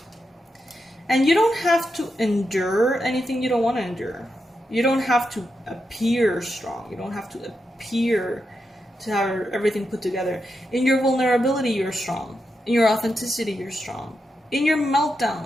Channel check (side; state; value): both; normal; correlation 0.86